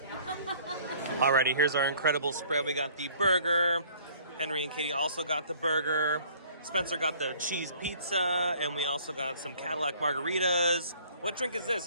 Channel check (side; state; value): both; inverted; correlation -0.55